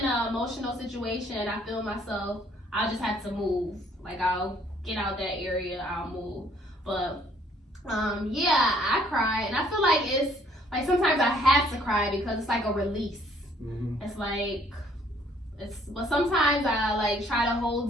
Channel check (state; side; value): normal; both; correlation 0.63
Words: an emotional situation, I feel myself, I'll just have to move. Like I'll get out that area, I'll move. But yeah, I cry, and I feel like it's like sometimes I have to cry because it's like a release. It's like but sometimes I like try to